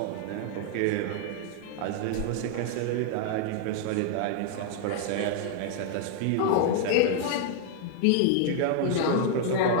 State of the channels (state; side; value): different; both; correlation 0.00